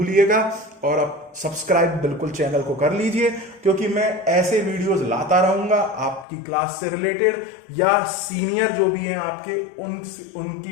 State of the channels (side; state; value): right; drops out; at 6.2 s